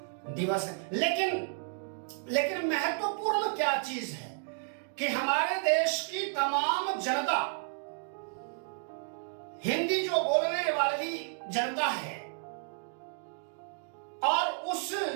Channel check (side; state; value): left; silent; digital silence